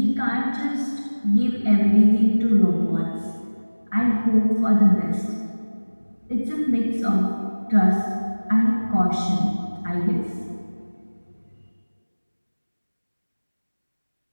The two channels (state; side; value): inverted; both; correlation -1.00